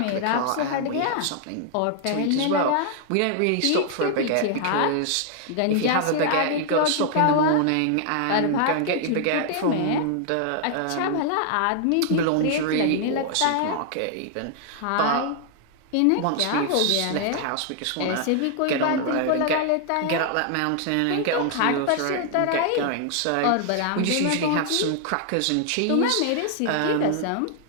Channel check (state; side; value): different; both; correlation 0.00